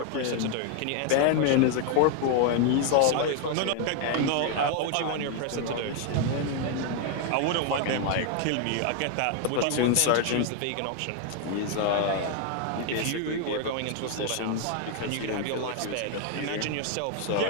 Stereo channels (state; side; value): different; both; correlation 0.00